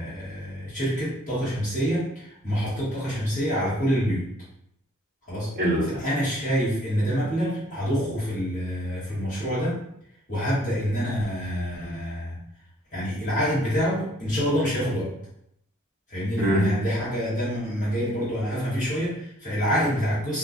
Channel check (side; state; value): both; normal; correlation 0.61